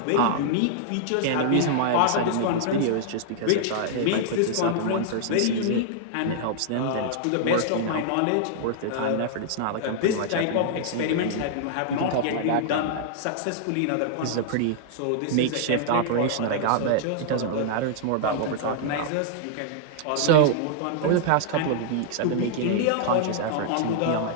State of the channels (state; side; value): different; both; correlation -0.01